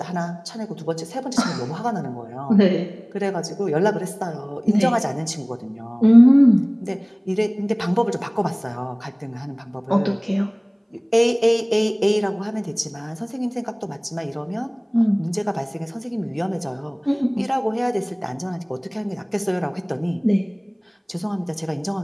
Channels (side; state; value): both; identical; correlation 1.00